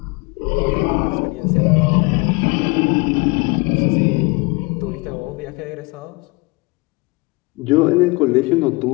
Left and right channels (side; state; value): right; quieter; 25.8 dB